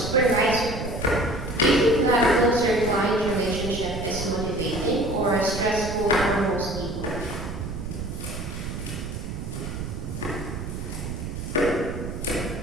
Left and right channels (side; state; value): right; noise; rumble, 6 dB below the sound